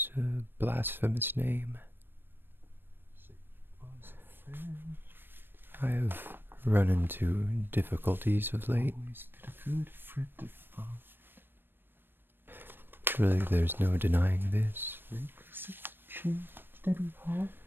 a blasphemous name. I have run into difficulties of late. Always been a good friend of mine. Surely there's no denying this.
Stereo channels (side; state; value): left; late; 0.097 ms